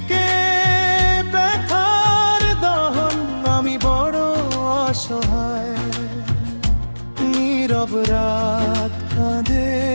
ব্যথার দহন। আমি বড় অসহায়। নীরব রাত কাঁদে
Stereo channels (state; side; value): inverted; both; correlation -1.00